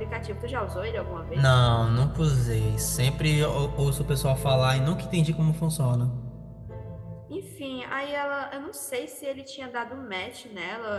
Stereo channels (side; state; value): both; identical; correlation 1.00